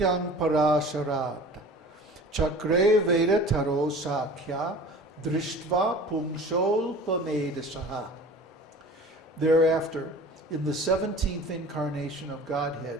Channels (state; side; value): normal; both; correlation 0.42